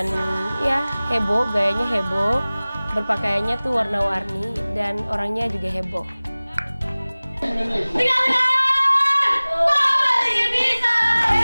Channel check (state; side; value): inverted; both; correlation -0.99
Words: ya heboh, gayanya heboh, berpakaiannya tuh warna-warni, dan orangnya juga heboh.